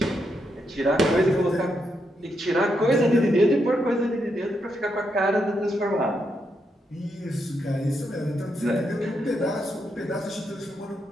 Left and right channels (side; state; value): both; normal; correlation 0.81